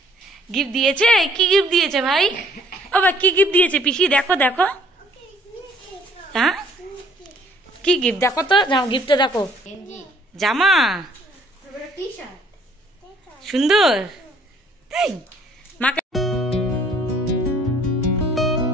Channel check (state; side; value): normal; both; correlation 0.61